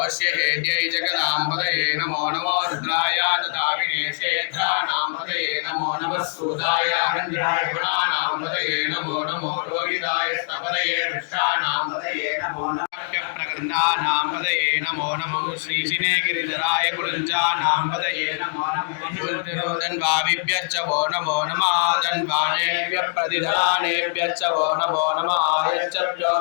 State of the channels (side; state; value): right; silent; digital silence